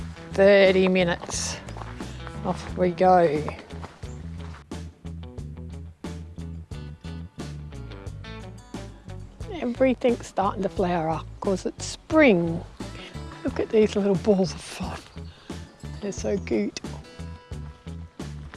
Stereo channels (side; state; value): both; identical; correlation 1.00